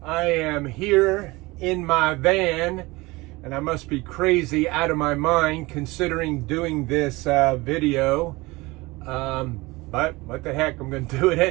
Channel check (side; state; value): left; quieter; 22.2 dB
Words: I am here in my van and I must be crazy out of my mind considering doing this video. But what the heck, I'm going to do it